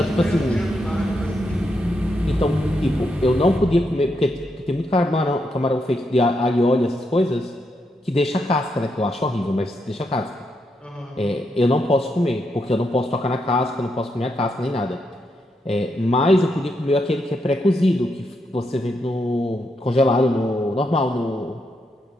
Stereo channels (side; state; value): both; normal; correlation 0.81